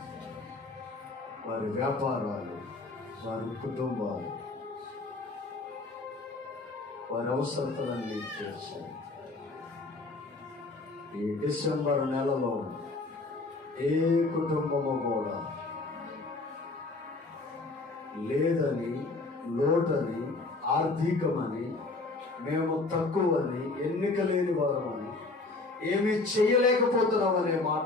వారి వ్యాపారాలు, వారి కుటుంబాలు, వారి అవసరతలన్నీ తీర్చారు. ఈ డిసెంబర్ నెలలో ఏ కుటుంబము కూడా లేదని, లోటని, ఆర్థికమని, మేము తక్కువని, ఎన్నిక లేని వారమని, ఏమీ చేయలేకపోతున్నామనే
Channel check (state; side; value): quieter; right; 3.4 dB